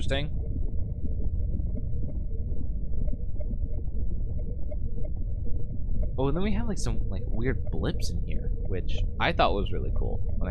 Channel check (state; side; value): identical; both; correlation 1.00